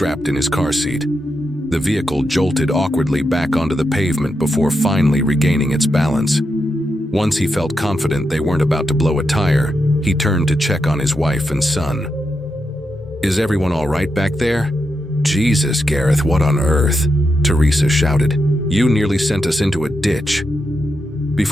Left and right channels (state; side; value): normal; both; correlation 0.85